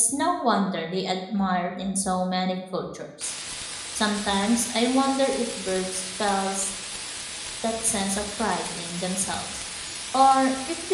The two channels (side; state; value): both; identical; correlation 1.00